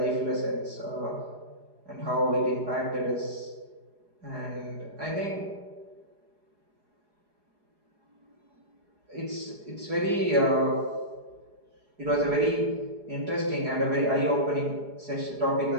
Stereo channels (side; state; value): left; late; 4.8 ms